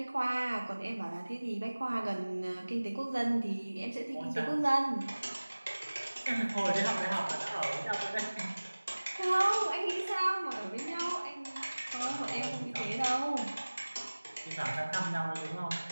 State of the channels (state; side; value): inverted; both; correlation -1.00